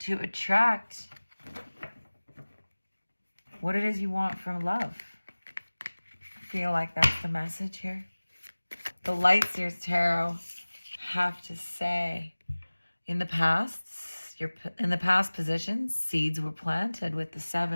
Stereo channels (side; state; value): both; inverted; correlation -1.00